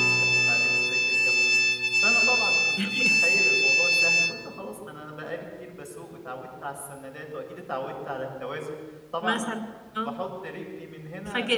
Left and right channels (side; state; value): both; identical; correlation 1.00